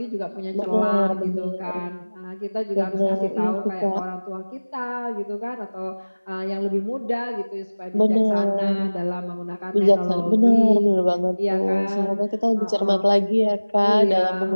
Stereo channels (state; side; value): inverted; both; correlation -1.00